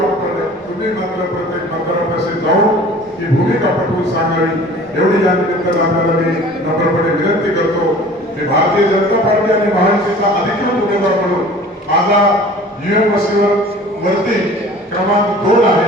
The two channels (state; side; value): normal; both; correlation 0.45